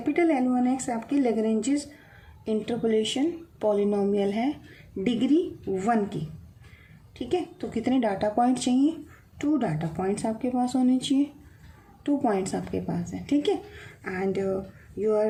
l1x आपकी लैग्रेंजेस इंटरपोलेशन पॉलिनोमियल है डिग्री 1 की, ठीक है। तो कितने डाटा पॉइंट चाहिए, 2 डाटा पॉइंट्स आपके पास होने चाहिए, 2 पॉइंट्स आपके पास है, ठीक है। And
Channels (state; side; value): identical; both; correlation 1.00